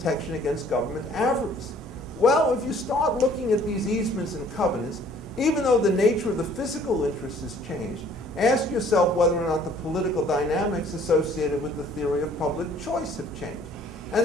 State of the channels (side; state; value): both; normal; correlation 0.56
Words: against government avarice. Well, if you start looking at these easements and covenants, even though the nature of the physical interest has changed, ask yourself whether or not the political dynamics associated with the theory of public choice have changed. And